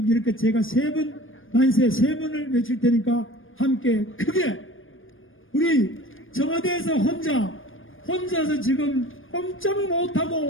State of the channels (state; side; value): late; right; 0.59 ms